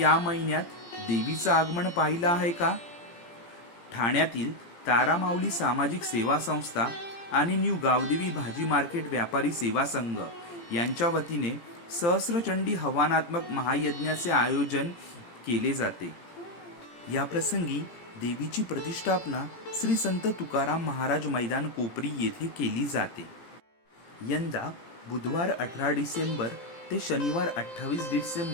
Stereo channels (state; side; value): late; right; 17 ms